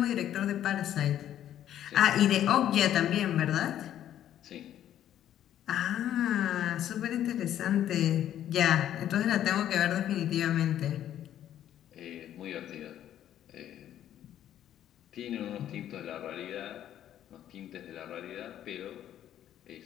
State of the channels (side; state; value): right; quieter; 11.2 dB